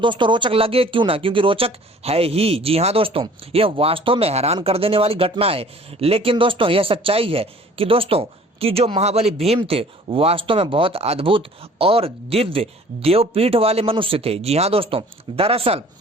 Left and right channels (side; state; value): both; normal; correlation 0.51